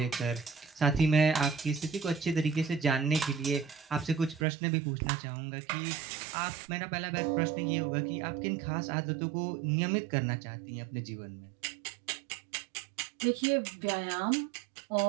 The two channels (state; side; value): drops out; left; at 4.5 s